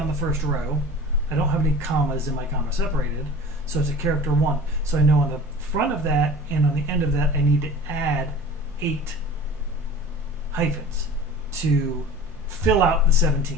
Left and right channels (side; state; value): both; normal; correlation 0.40